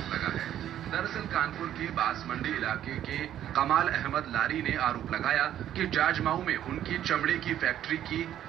लगा है। दरअसल कानपुर के बांसमंडी इलाके के कमाल अहमद लारी ने आरोप लगाया कि जाजमाऊ में उनकी चमड़े की फैक्ट्री की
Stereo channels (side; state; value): left; quieter; 11.2 dB